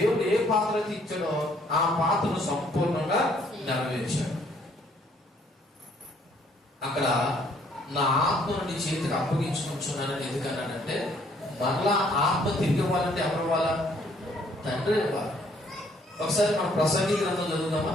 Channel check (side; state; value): both; normal; correlation 0.64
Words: ఏ పాత్ర అయితే ఇచ్చాడో ఆ పాత్రను సంపూర్ణంగా నెరవేర్చాడు. అక్కడ నా ఆత్మను నీ చేతికి అప్పగించుకుంటున్నానని ఎందుకన్నాడంటే, మరలా ఆత్మ తిరిగి ఇవ్వాలంటే ఎవరు ఇవ్వాలా? తండ్రి ఇవ్వాలి. ఒకసారి మనం ప్రసంగి గ్రంథం చదువుదామా?